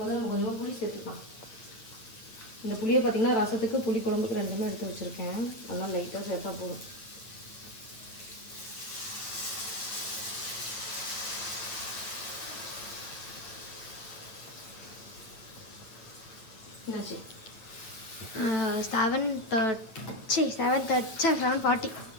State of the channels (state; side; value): late; right; 8.8 ms